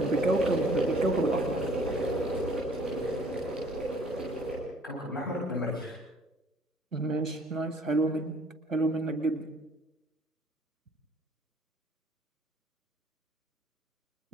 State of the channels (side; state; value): both; normal; correlation 0.57